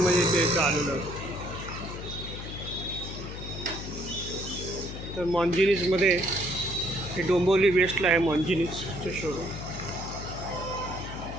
ते आलेलो आहोत. तर मॉन्जिनीजमध्ये हे डोंबिवली वेस्टला आहे मॉन्जिनीजचं शोरूम.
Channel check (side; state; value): left; noise; hum, 9 dB below the sound